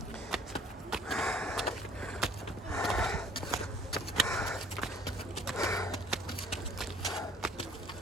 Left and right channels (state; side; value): normal; both; correlation 0.55